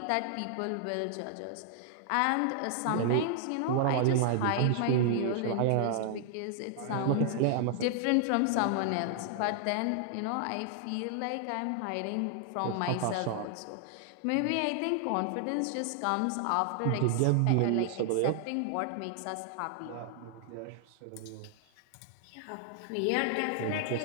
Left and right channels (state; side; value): different; both; correlation 0.00